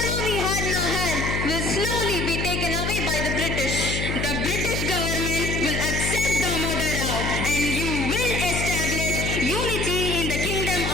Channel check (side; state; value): left; noise; hum, 2 dB below the sound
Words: we had in our hand will slowly be taken away by the British. The British government will accept Damodar Rao and you will establish unity in the kingdom